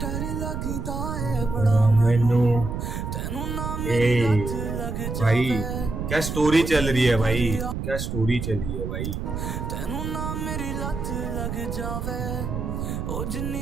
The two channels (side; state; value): right; noise; rumble, 4 dB below the sound